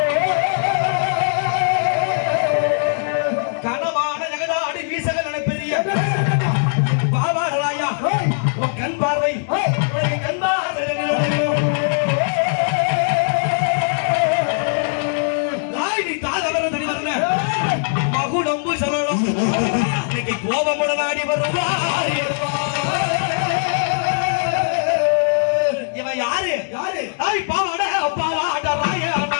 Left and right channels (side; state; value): right; silent; digital silence